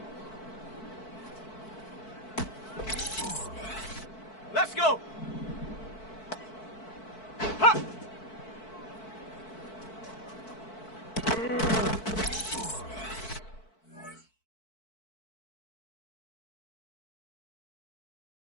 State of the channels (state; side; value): late; right; 4.5 ms